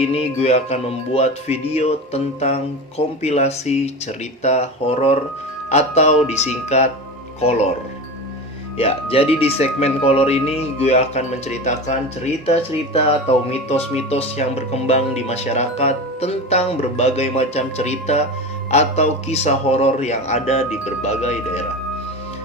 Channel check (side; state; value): both; normal; correlation 0.27